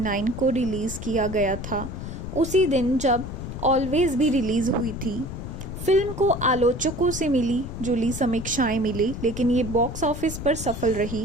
को रिलीज किया गया था, उसी दिन जब ऑलवेज भी रिलीज हुई थी। फिल्म को आलोचकों से मिली जुली समीक्षाएं मिली, लेकिन ये बॉक्स ऑफिस पर सफल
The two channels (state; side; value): noise; left; rumble, 8 dB below the sound